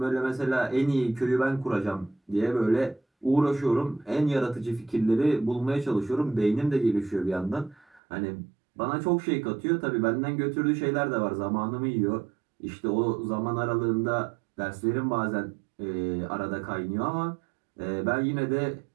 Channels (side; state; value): left; drops out; at 8.0 s